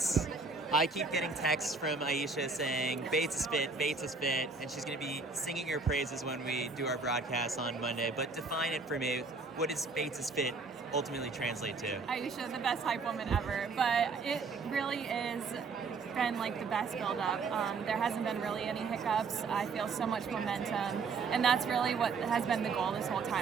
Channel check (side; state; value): left; quieter; 4.4 dB